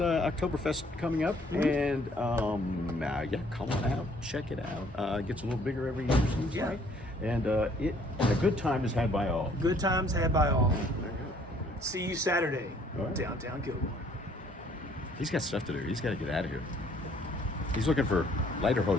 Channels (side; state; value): both; normal; correlation 0.61